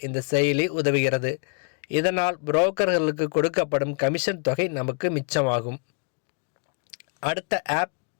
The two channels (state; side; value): quieter; right; 39.1 dB